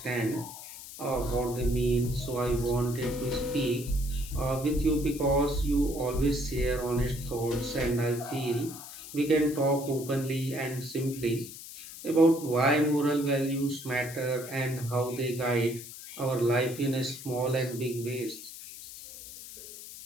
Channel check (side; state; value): left; noise; hiss, 13 dB below the sound